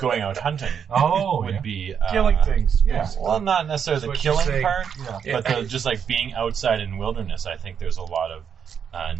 out hunting. Would be Killing things. Yeah. Well, not necessarily the That's what you're killing saying. part, Yeah. but just like being outside in wilderness. I think there's a lot of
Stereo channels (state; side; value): quieter; left; 7.5 dB